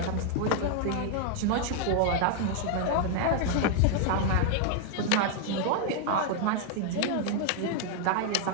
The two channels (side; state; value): both; different; correlation 0.00